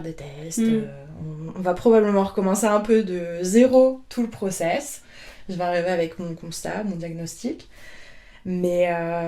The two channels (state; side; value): identical; both; correlation 1.00